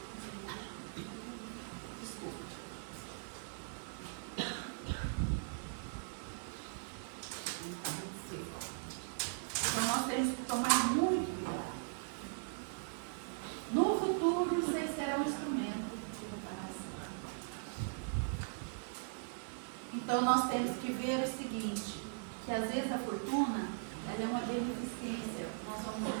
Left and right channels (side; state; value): left; silent; 51 dB below the other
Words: Desculpa. Então, nós temos que tomar muito cuidado. No futuro, vocês serão instrumento de reparação. Então nós temos que ver o seguinte, que às vezes a fortuna, ela é uma beneficência, nós vamos